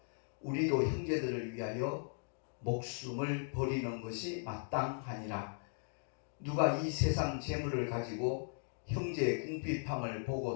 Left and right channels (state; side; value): silent; right; 53 dB below the other